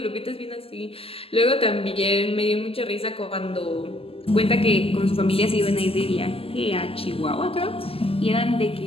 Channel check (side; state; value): right; late; 0.28 ms